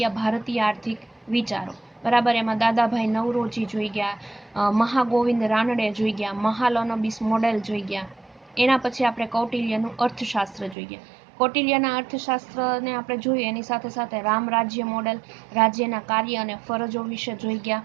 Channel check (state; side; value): drops out; left; at 10.8 s